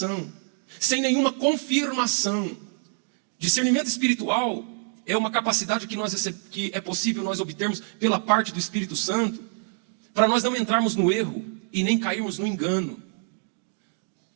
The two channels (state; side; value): silent; left; 56 dB below the other